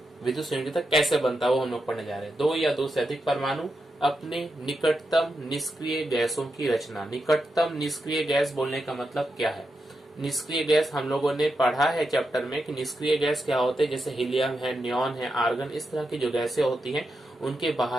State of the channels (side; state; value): both; normal; correlation 0.86